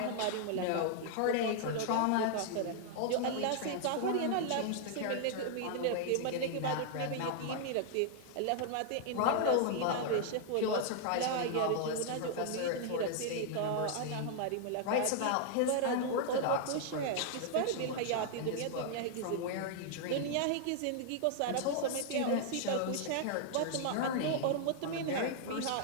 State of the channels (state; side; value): different; both; correlation 0.00